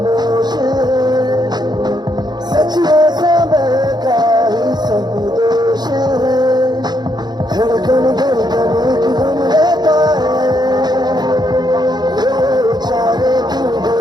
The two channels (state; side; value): late; left; 0.20 ms